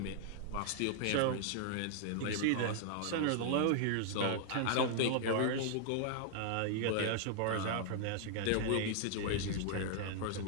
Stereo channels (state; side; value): different; both; correlation -0.01